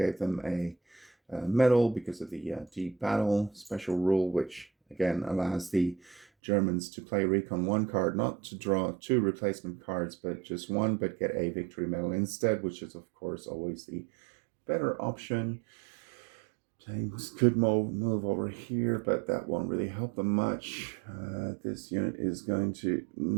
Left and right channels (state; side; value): drops out; left; at 6.2 s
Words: them a medal because of the deep battle special rule, which again allows the Germans to play Recon 1 card, not to draw 2 replacement cards, but just 1, but get a victory medal instead, which is of course always the better option. Tanks could move over here, but that won't really help them much. This unit is going to